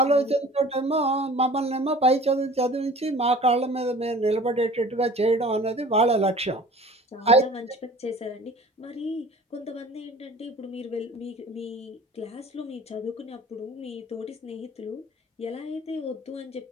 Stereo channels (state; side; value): normal; both; correlation 0.45